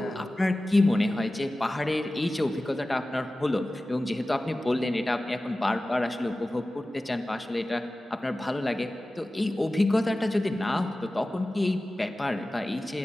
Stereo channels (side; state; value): both; normal; correlation 0.96